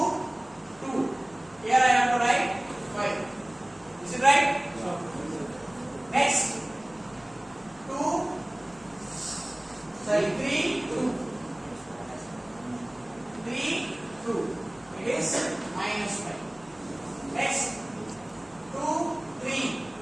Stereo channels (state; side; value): noise; left; hum, 26 dB below the sound